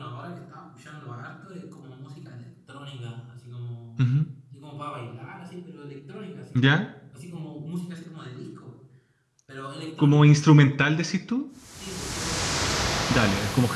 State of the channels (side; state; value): both; identical; correlation 1.00